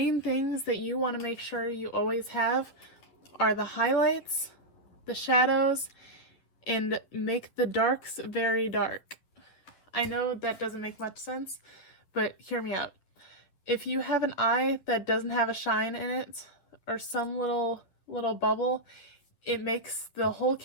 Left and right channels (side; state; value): right; late; 11 ms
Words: things that you want to make sure you always have are the highlights, the shadows, and make the darks very dark. I know that doesn't make much sense, but hear me out. If you have an eye that doesn't have a shine in it, or some little bubble, it makes the whole